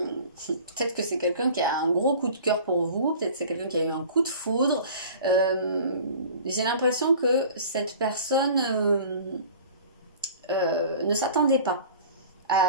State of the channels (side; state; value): both; inverted; correlation -0.43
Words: que c'est quelqu'un qui a un gros coup de cœur pour vous, peut-être que c'est quelqu'un qui a eu un coup de foudre. J'ai l'impression que cette personne ne s'attendait pas